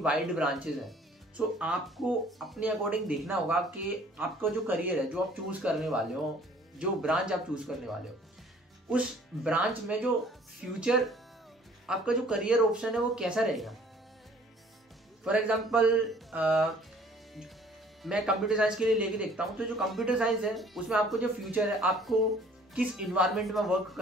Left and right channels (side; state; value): both; normal; correlation 0.55